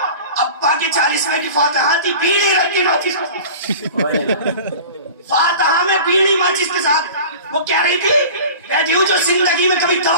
ابا کے 40ویں کی فاتحہ تھی، بیڑی رکھی ماچس فاتحہ میں بیڑی ماچس کے ساتھ. وہ کہہ رہی تھی بیٹیوں جو زندگی میں کبھی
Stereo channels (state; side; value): inverted; both; correlation -0.38